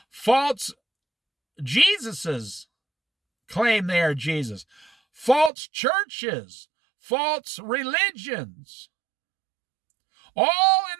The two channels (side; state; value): left; drops out; at 5.5 s